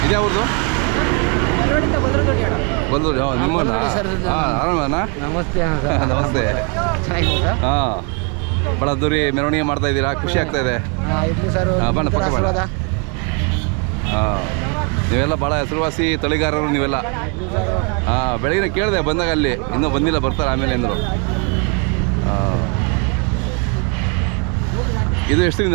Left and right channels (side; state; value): left; quieter; 34.2 dB